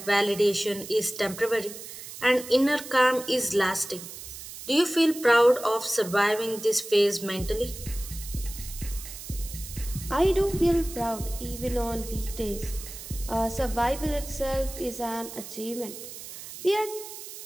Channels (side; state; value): right; noise; hiss, 12 dB below the sound